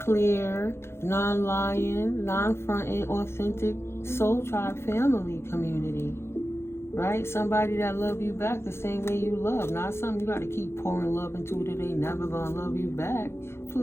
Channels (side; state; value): right; late; 0.12 ms